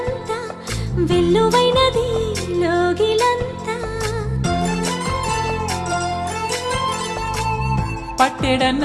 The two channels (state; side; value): identical; both; correlation 1.00